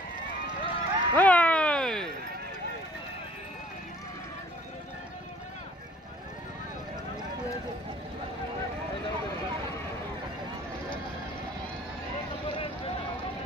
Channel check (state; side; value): normal; both; correlation 0.55